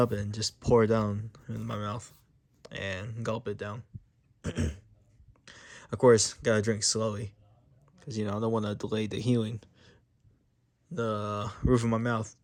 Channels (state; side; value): identical; both; correlation 1.00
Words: and just pour it down in my mouth and gulp it down. Of course, gotta drink slowly because I don't want to delay the healing. The roof of my mouth,